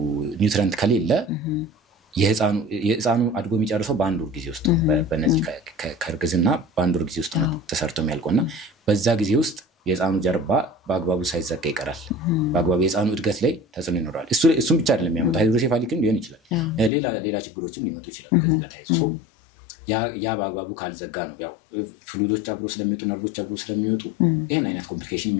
ኒውትሪየንት ከሌለ የህፃኑ አድጎ የሚጨርሰው በአንድ ወር ጊዜ ውስጥ በእነዚህ ከርግዝና በአንድ ወር ጊዜ ውስጥ ነው ተሰርቶ የሚያልቀውና በዛ ጊዜ ውስጥ የህፃኑ ጀርባ በአግባቡ ሳይዘጋ ይቀራል በአግባቡ የህፃኑ እድገት ላይ ተጽዕኖ ይኖራል እሱም ብቻ አይደለም የሚያመጣው ሃይድሮሴፋሊክም ሊሆን ይችላል ሌላ ችግሮችም ሊመጡ ይችላል ከዚህ ጋር ታይዞ ሶ ያ በአግባቡ ካልዘጋ ነው ያው ፍሉይዶች አብሮ ስለሚወጡ ነርቮች አብሮ ስለሚወጡ ይሄን አይነት ኮምፕሊኬሽን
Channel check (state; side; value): drops out; right; at 16.9 s